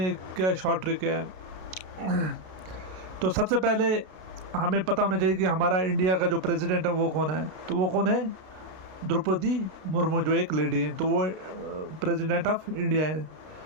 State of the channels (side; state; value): left; late; 32 ms